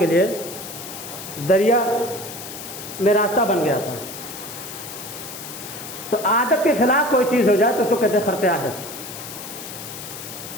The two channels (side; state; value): left; noise; hiss, 11 dB below the sound